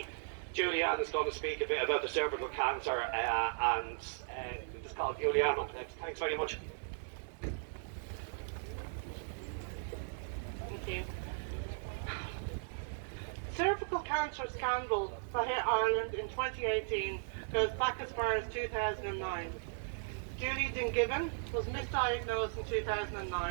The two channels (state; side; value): silent; left; digital silence